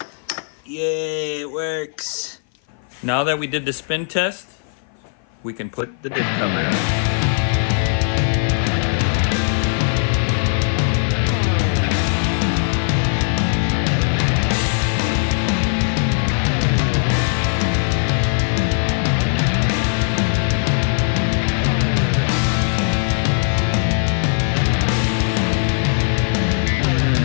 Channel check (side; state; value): right; silent; 57 dB below the other